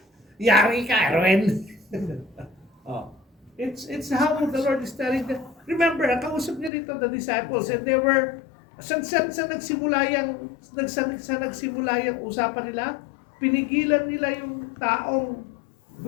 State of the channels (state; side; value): drops out; right; at 6.7 s